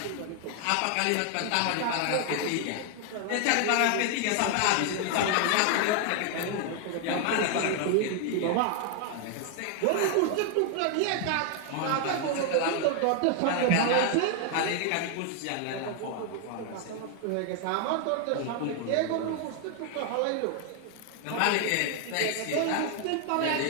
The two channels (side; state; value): both; different; correlation 0.00